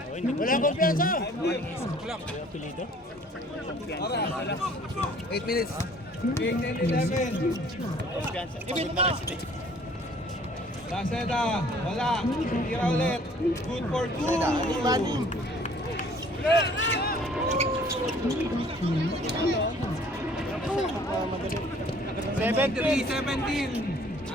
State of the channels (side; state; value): both; normal; correlation 0.55